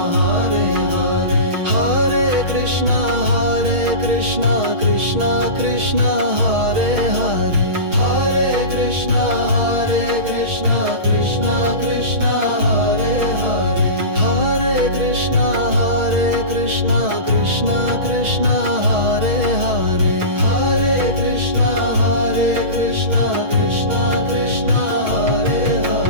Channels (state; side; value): late; left; 6.3 ms